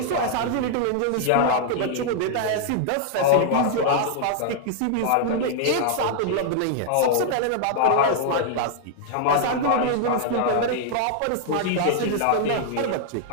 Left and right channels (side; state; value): both; different; correlation -0.01